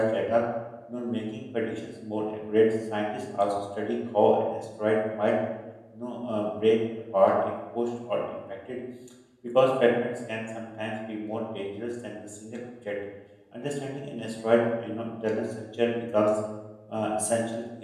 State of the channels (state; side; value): identical; both; correlation 1.00